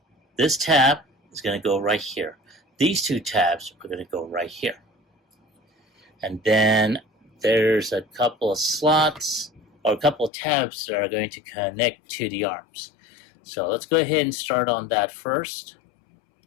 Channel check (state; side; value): drops out; right; at 10.3 s